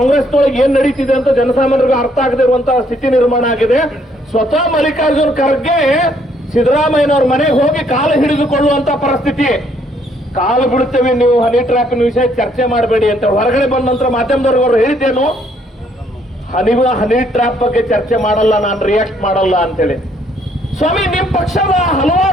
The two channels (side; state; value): both; normal; correlation 0.67